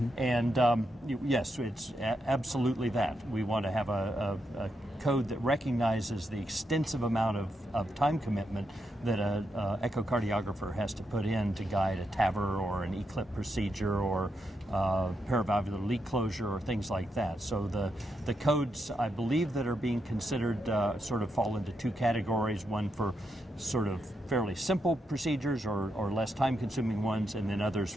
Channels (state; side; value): normal; both; correlation 0.83